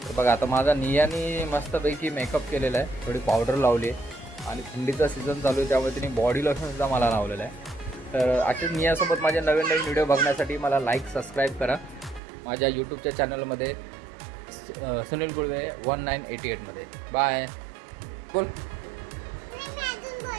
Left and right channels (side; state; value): left; drops out; at 12.2 s